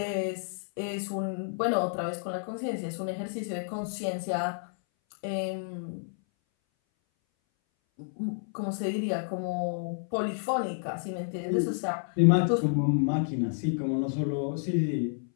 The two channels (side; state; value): right; silent; 58 dB below the other